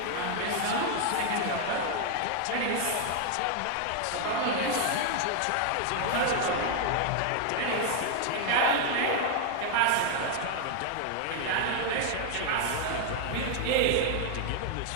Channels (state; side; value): different; both; correlation 0.00